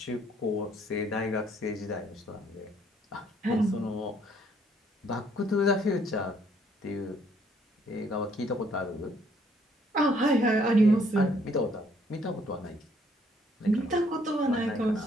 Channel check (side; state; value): both; normal; correlation 0.65